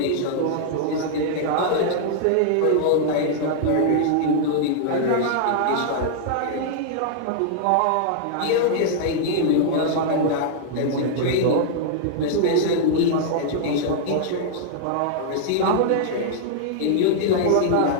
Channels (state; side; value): different; both; correlation -0.01